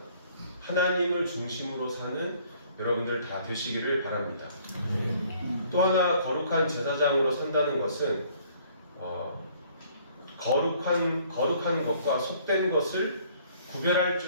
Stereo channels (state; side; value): inverted; both; correlation -0.59